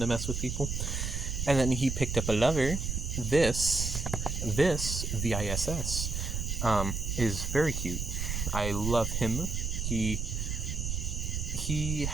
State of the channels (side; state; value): right; noise; rumble, 2 dB below the sound